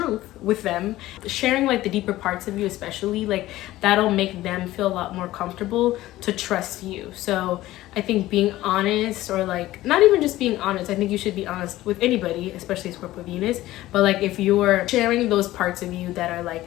with them, sharing like the deeper parts of you, especially, like that'll make them feel a lot more comfortable to trust you. So I think being honest, or like not even just being honest, I think you should be honest with anybody, especially Scorpio Venus, but like if you're sharing those parts of you that are like,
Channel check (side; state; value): right; quieter; 16.0 dB